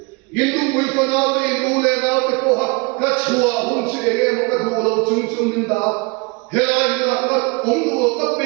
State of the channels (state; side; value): quieter; left; 29.2 dB